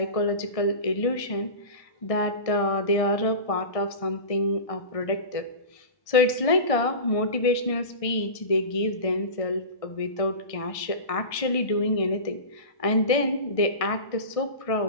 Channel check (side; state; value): right; late; 1.6 ms